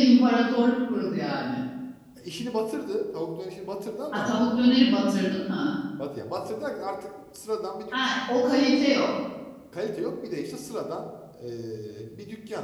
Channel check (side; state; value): both; identical; correlation 1.00